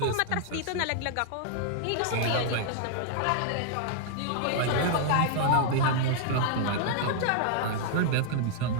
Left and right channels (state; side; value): different; both; correlation -0.01